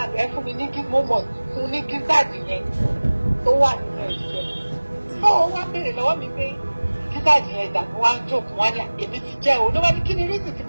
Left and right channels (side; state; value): both; inverted; correlation -1.00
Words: ẹ fún mi ní mo mọ̀ fún ní gígáàdì yẹn tó wà nínú ẹ̀jẹ̀. Tó o wá béèrè lọ́wọ́ mi pé gígáàdì yẹn dà mo wá ń jókòó wá ní èmi ti jẹ́ o. Ló wá ní kí ni rísì tí